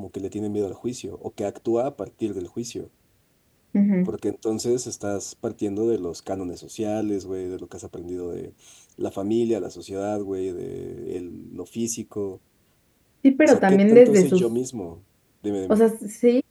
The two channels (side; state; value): both; identical; correlation 1.00